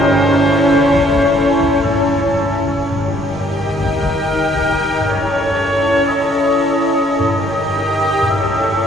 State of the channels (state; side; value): normal; both; correlation 0.65